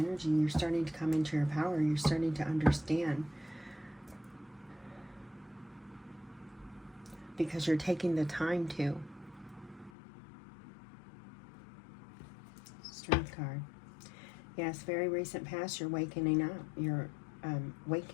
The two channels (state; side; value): drops out; right; at 9.9 s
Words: You're starting to come into your power. You're starting to understand. Because you're taking the time to. Strength card. Yes, very recent past. You're waking up. You're